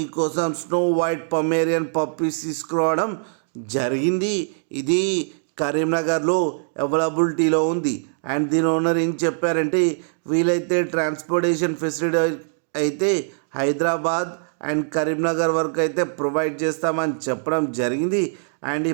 స్నో వైట్ పొమేరియన్ పప్పీస్ తీసుకురావడం జరిగింది. ఇది కరీంనగర్లో అవైలబిలిటీలో ఉంది. అండ్ దీని ఓనర్ ఏం చెప్పారంటే, వీలైతే ట్రాన్స్పోర్టేషన్ ఫెసిలిటీ అయితే హైదరాబాద్ అండ్ కరీంనగర్ వరకు అయితే ప్రొవైడ్ చేస్తామని చెప్పడం జరిగింది. అండ్ ఈ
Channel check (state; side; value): silent; left; digital silence